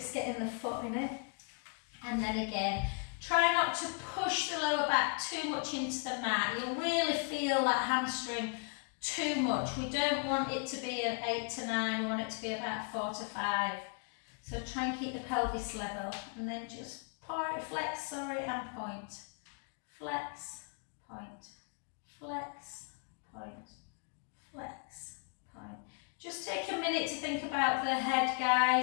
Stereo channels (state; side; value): quieter; right; 38.1 dB